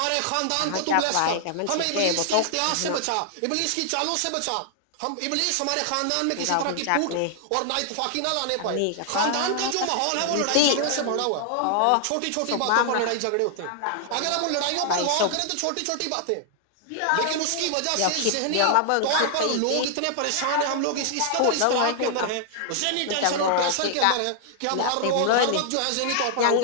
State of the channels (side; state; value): both; different; correlation -0.01